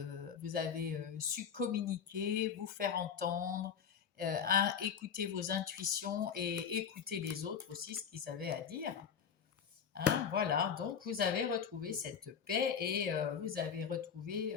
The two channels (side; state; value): right; quieter; 7.4 dB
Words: vous avez su communiquer, vous faire entendre, écouter vos intuitions et écouter les autres aussi, ce qu'ils avaient à dire. Hein, voilà, donc vous avez retrouvé cette paix et vous avez retrouvé